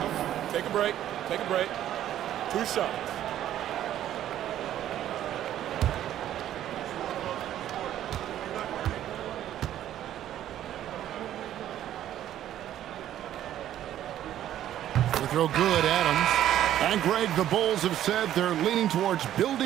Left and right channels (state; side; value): quieter; left; 11.9 dB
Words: Take a break. Take a break. 2 shots. They throw good, Adams. And Greg, the Bulls have said they're leaning towards